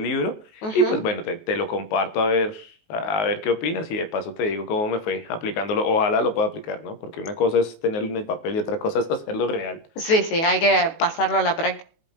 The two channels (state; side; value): late; right; 19 ms